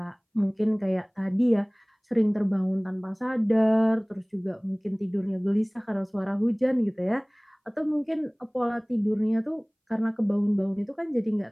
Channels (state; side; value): identical; both; correlation 1.00